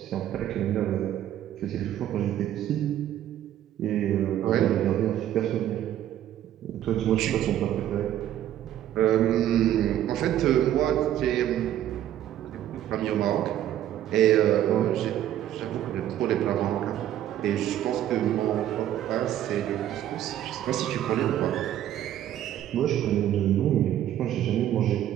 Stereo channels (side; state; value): left; quieter; 11.8 dB